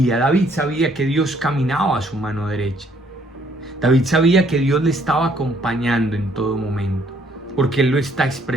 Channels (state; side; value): normal; both; correlation 0.65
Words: David sabía que Dios caminaba a su mano derecha. David sabía que Dios le estaba acompañando en todo momento, porque él lo está